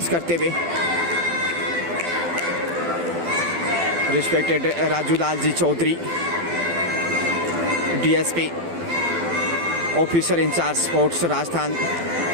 करते हुए। Respected Raju Lal ji Chaudhary, DSP officer in charge sports Rajasthan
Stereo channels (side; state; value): left; late; 12 ms